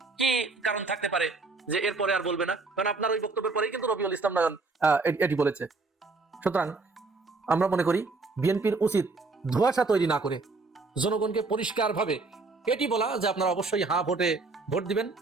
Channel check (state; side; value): quieter; left; 3.8 dB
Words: কি কারণ থাকতে পারে যে এরপরে আর বলবে না? কারণ আপনার ওই বক্তব্যের পরেই কিন্তু রবিউল ইসলাম নয়ন এটি বলেছে। সুতরাং আমরা মনে করি বিএনপির উচিত ধোঁয়াশা তৈরি না করে জনগণকে পরিষ্কার ভাবে এটি বলা যে আপনারা অবশ্যই ভোটে ভোট দিবেন,